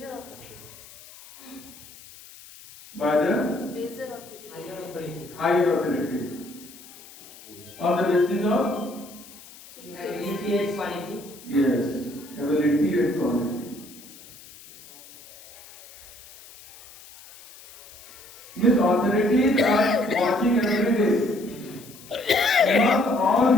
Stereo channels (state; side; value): noise; left; hiss, 20 dB below the sound